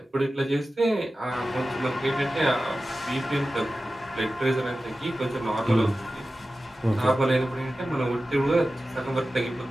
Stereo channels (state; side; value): normal; both; correlation 0.94